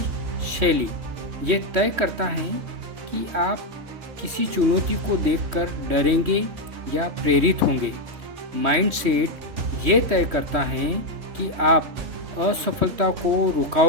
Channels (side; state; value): left; late; 3.1 ms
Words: शैली। ये तय करता है कि आप किसी चुनौती को देखकर डरेंगे या प्रेरित होंगे। माइंडसेट ये तय करता है कि आप असफलता को